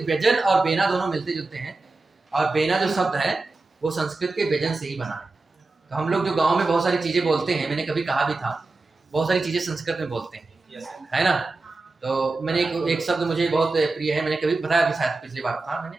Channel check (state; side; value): quieter; left; 3.4 dB